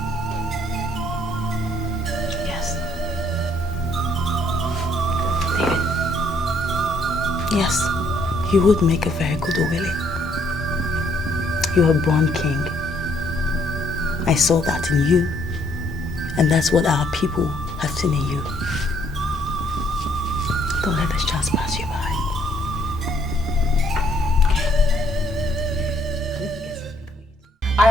Yes. David. Yes, you would make a very good Owele. You're a born king. I saw that in you, and that's what our people have seen in you. Don't let this chance pass you by. I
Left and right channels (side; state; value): both; normal; correlation 0.67